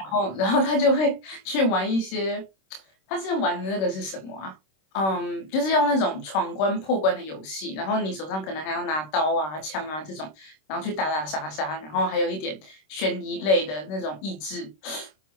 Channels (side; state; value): right; late; 26 ms